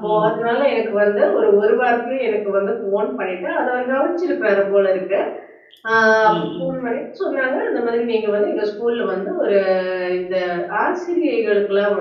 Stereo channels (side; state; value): both; identical; correlation 1.00